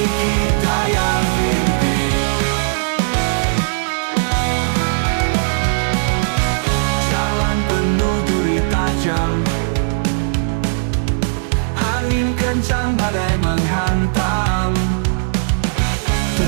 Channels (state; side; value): silent; left; digital silence